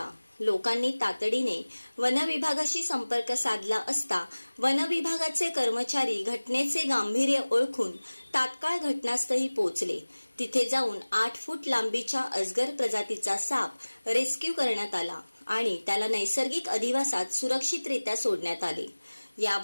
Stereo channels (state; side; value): inverted; both; correlation -1.00